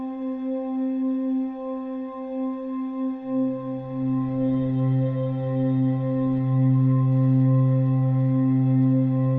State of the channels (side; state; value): both; identical; correlation 1.00